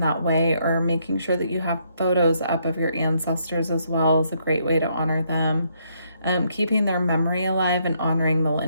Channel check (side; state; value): both; inverted; correlation -0.73